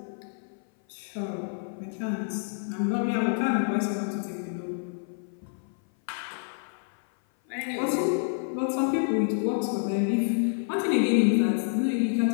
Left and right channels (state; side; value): silent; right; 57 dB below the other